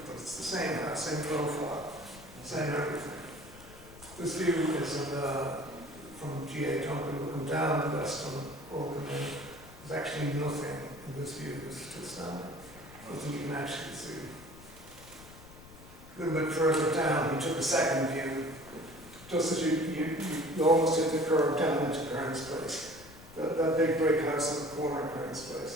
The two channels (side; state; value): left; noise; rumble, 19 dB below the sound